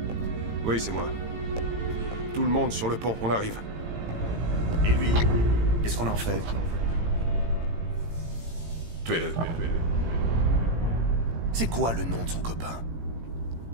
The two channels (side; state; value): left; late; 18 ms